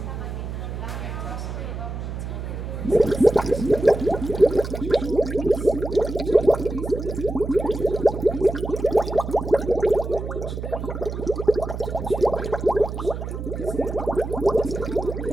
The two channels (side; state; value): right; noise; hum, 6 dB below the sound